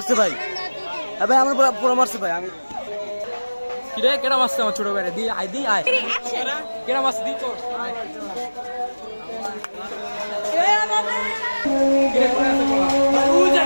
ভাই, ভাই আমার পোলা মারছে ভাই। আমি কি রে কেডা মারছে আমার ছোট ভাইরে? দি আই দি আয় কেডা মারছে দি তোর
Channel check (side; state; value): both; inverted; correlation -1.00